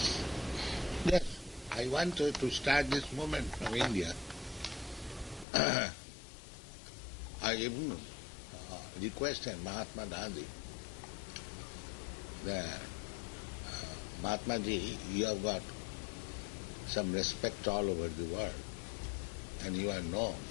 Yes, I wanted to start this movement from India. I even requested Mahatma Gandhi that Mahatma Ji, you have got some respect all over the world, and you are known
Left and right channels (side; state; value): right; drops out; at 5.5 s